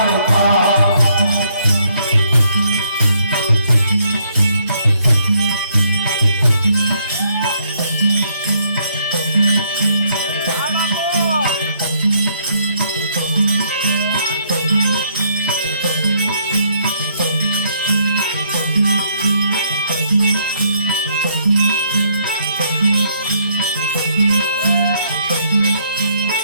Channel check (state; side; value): inverted; both; correlation -0.70